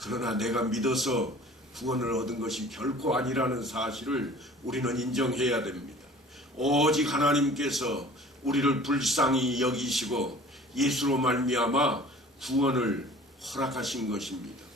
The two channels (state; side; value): normal; both; correlation 0.46